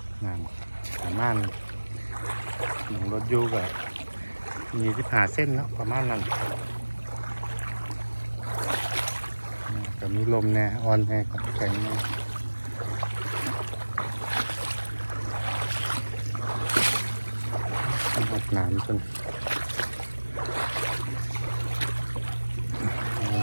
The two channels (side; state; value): both; inverted; correlation -1.00